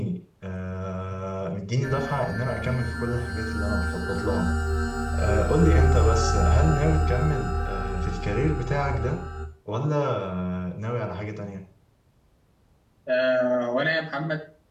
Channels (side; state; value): both; identical; correlation 1.00